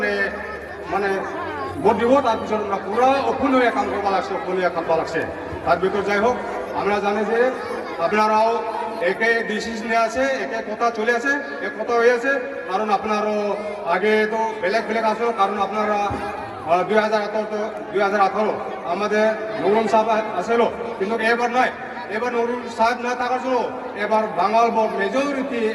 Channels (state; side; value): identical; both; correlation 1.00